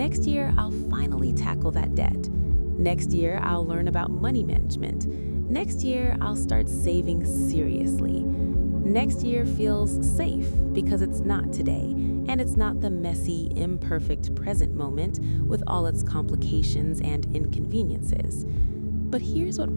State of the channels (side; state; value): both; inverted; correlation -1.00